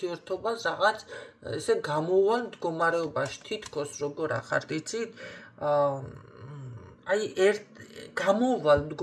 რაღაც ესე გამოვალ მდგომარეობაში, თითქოს როგორ ახართ, იცით? აი გამოვალ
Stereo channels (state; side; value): identical; both; correlation 1.00